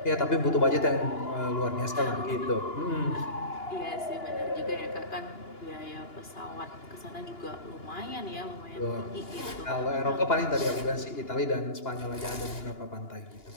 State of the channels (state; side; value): late; right; 2.9 ms